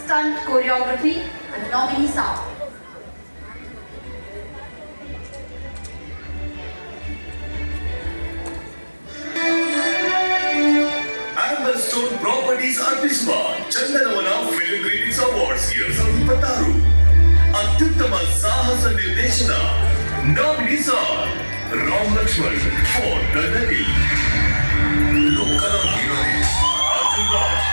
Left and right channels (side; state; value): both; inverted; correlation -1.00